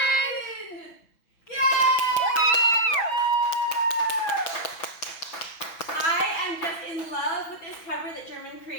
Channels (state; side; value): late; right; 6.1 ms